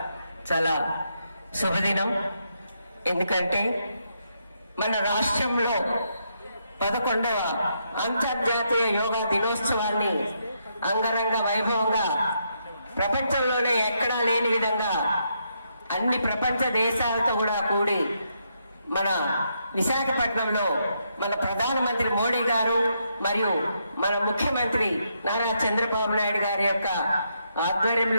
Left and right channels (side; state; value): both; inverted; correlation -0.78